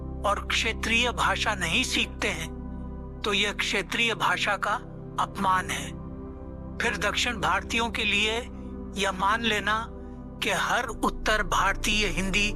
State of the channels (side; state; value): both; identical; correlation 1.00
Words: और क्षेत्रीय भाषा नहीं सीखते हैं तो यह क्षेत्रीय भाषा का अपमान है। फिर दक्षिण भारतीयों के लिए यह मान लेना कि हर उत्तर भारतीय हिंदी